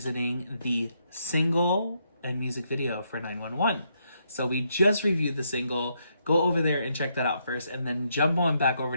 the single and music video for 911. So we just reviewed the single. Go over there and check that out first. And then jump on back over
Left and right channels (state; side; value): inverted; both; correlation -0.76